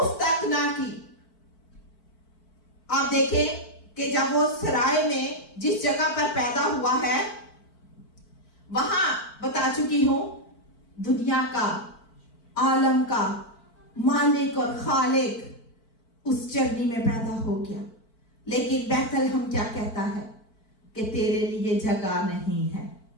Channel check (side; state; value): right; late; 4.5 ms